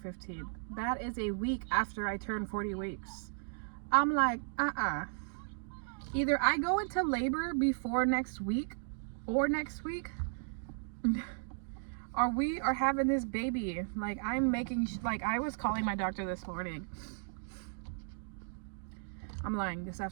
That is a week after I turned 40 weeks. I'm like, either I go into labor before next week or next week, or we are having this baby. Like, I'm making, like, I was calling my doctor this morning. I'm lying, this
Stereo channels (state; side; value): silent; left; digital silence